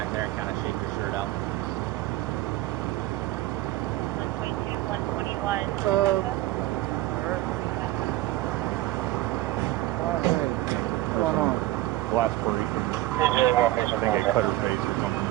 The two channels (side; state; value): left; quieter; 16.4 dB